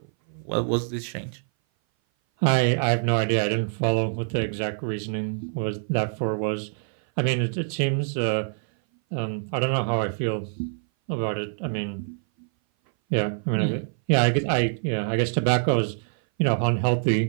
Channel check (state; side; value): silent; left; 58 dB below the other